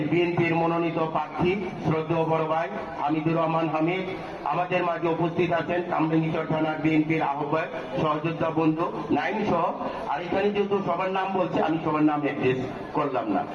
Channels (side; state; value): both; identical; correlation 1.00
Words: বিএনপির মনোনীত প্রার্থী শ্রদ্ধেয় বড় ভাই হামিদুর রহমান হামিদ আমাদের মাঝে উপস্থিত আছেন। কামরাঙ্গীরচর থানার বিএনপির আহ্বায়ক সহযোদ্ধা বন্ধু নাইম সহ। আর এখানে যেহেতু সবার নাম বলছে, আমি সবার নাম অ্যাড্রেস করলাম না।